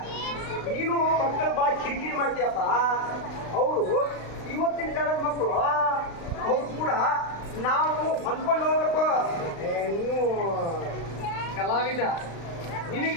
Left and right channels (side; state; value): right; late; 35 ms